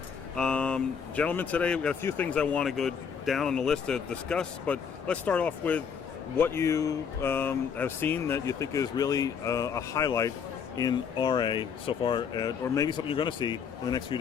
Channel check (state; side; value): quieter; right; 6.8 dB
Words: Gentlemen, today we've got a few things I want to go down on the list to discuss, but let's start off with what you have seen that you think is really a highlight in RA so far, or maybe something you're going to see in the next few